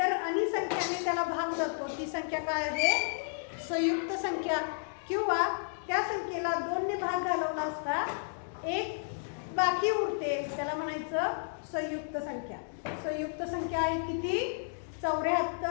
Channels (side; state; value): right; silent; digital silence